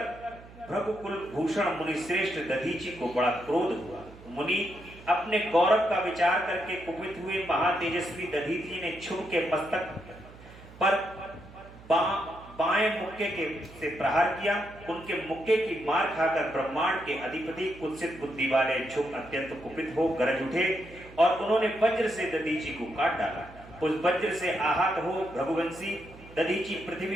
भृगुकुल भूषण मुनि श्रेष्ठ दधीची को बड़ा क्रोध हुआ। मुनि अपने गौरव का विचार करके कुपित हुए। महातेजस्वी दधीची ने क्षुभ के मस्तक पर बाएं मुक्के से प्रहार किया। उनके मुक्के की मार खाकर ब्रह्मांड के अधिपति कुत्सित बुद्धि वाले क्षुभ अत्यंत कुपित हो गरज उठे और उन्होंने वज्र से दधीची को काट डाला। उस वज्र से आहत हो भृगुवंशी दधीची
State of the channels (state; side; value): noise; right; hum, 20 dB below the sound